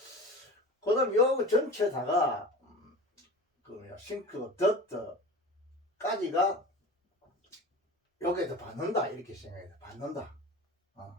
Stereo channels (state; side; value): normal; both; correlation 0.34